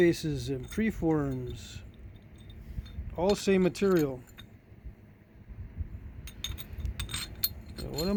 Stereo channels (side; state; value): both; identical; correlation 1.00